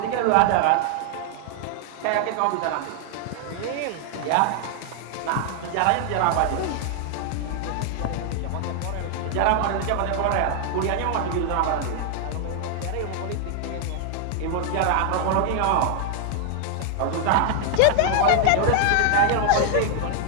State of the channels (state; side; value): different; both; correlation 0.00